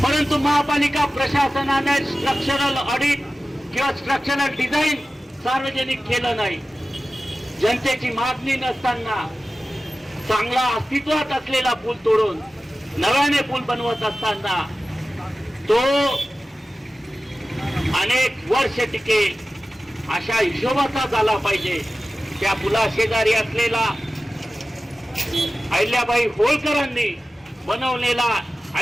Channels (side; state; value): both; normal; correlation 0.95